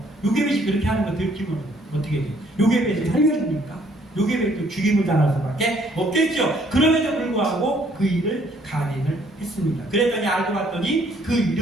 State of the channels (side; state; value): both; normal; correlation 0.64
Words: 요게벳이 그렇게 하는 거 들키면 어떻게 돼요? 요게벳을 살려줍니까? 요게벳도 죽임을 당할 수밖에 없겠죠. 그럼에도 불구하고 그 일을 간행을 했습니다. 그랬더니 알고 봤더니 그